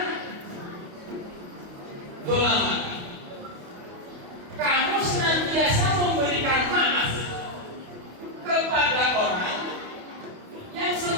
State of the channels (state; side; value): late; left; 28 ms